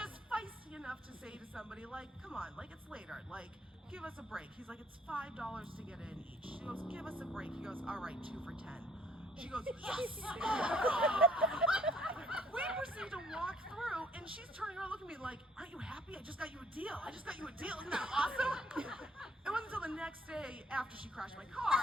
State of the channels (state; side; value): normal; both; correlation 0.63